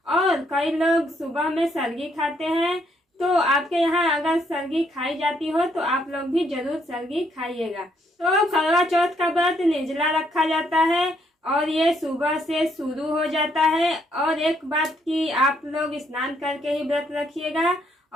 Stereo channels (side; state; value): both; normal; correlation 0.72